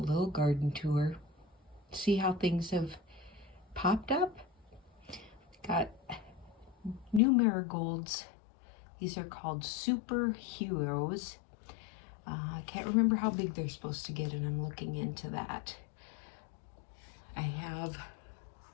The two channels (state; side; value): drops out; right; at 7.2 s